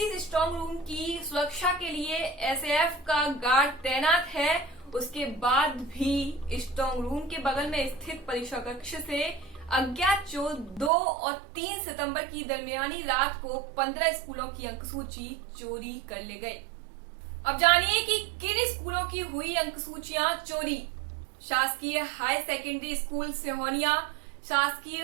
स्ट्रांग रूम की सुरक्षा के लिए एसएएफ का गार्ड तैनात है। उसके बाद भी स्ट्रांग रूम के बगल में स्थित परीक्षा कक्ष से अज्ञात चोर 2 और 3 सितंबर की दरमियानी रात को 15 स्कूलों की अंकसूची चोरी कर ले गए। अब जानिए कि किन स्कूलों की हुई अंकसूचियां चोरी। शासकीय हाई सेकेंडरी स्कूल सिहोनिया,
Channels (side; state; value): left; drops out; at 10.9 s